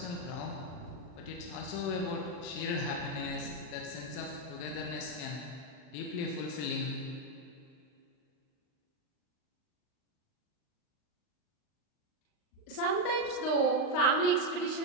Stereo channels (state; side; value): late; right; 39 ms